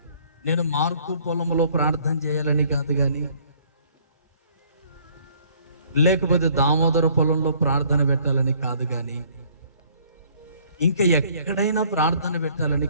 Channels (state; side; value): inverted; both; correlation -0.60